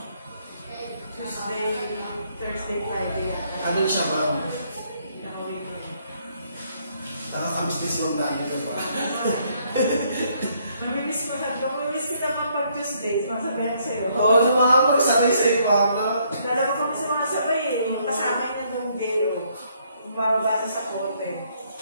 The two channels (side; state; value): both; inverted; correlation -0.69